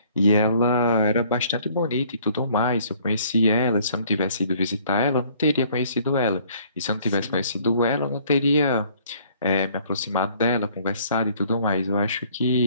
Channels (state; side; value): inverted; both; correlation -0.58